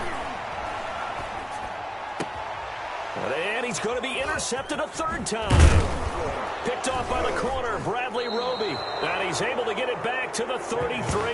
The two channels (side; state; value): both; identical; correlation 1.00